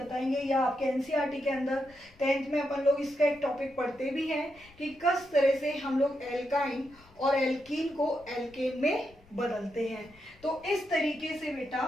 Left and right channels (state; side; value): noise; left; rumble, 27 dB below the sound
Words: या आपके एनसीईआरटी के अंदर 10th में अपन लोग इसका एक टॉपिक पढ़ते भी हैं कि किस तरह से हम लोग एल्काइन और एल्कीन को एल्केन में बदलते हैं। तो इस तरीके से बेटा